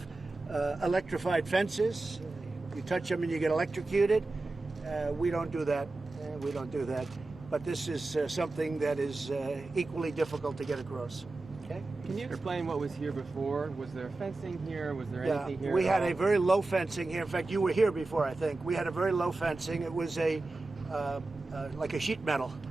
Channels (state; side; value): quieter; left; 3.2 dB